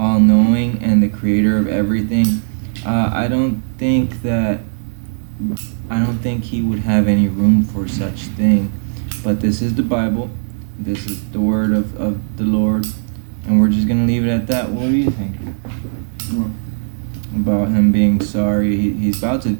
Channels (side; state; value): left; silent; 68 dB below the other